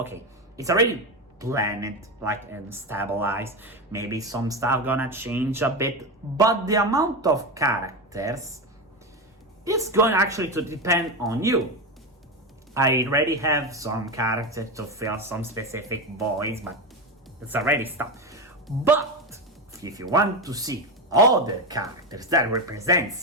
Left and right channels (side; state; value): both; normal; correlation 0.16